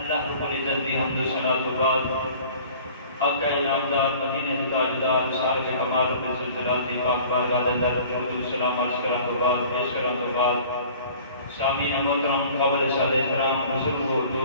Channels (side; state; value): both; inverted; correlation -0.48